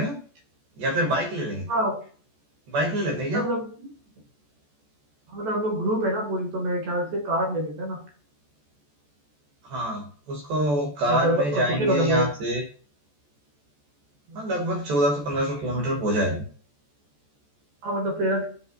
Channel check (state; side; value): late; left; 14 ms